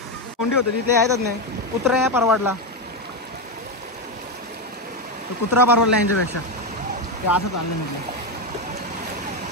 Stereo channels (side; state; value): both; normal; correlation 0.09